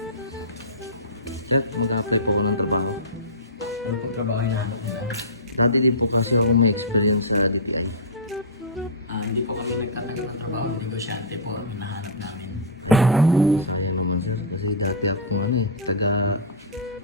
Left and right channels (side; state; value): both; normal; correlation -0.15